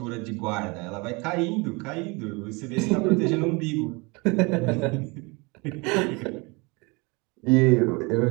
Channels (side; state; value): left; quieter; 27.5 dB